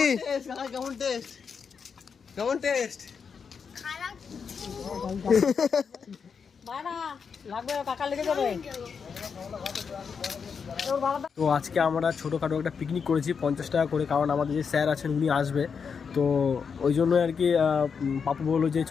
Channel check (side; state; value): right; quieter; 6.1 dB